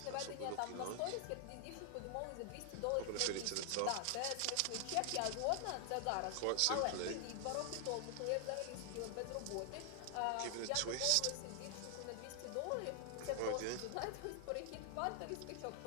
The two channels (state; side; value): different; both; correlation 0.00